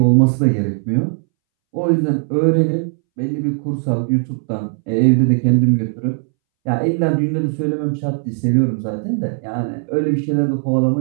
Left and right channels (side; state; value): left; silent; 65 dB below the other